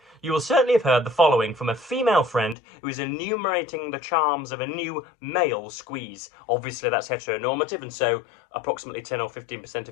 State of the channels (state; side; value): drops out; right; at 2.6 s